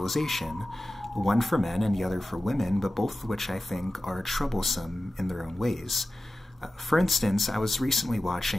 one for men and the other for women, but both of which I think are troublesome in their own ways. For instance, I was recently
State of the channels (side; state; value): both; normal; correlation 0.95